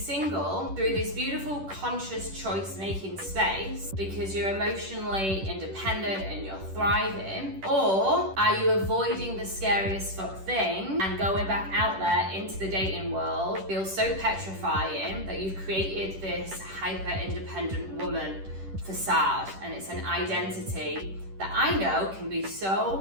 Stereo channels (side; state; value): left; late; 10 ms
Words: through this beautiful conscious choice-making space because you're emotionally independent and you're thriving? Or are you avoiding the scariest fuck thing and going back out there into the dating world feels so petrifying that you've created this hyper-independent woman facade, and it's an identity that I know can be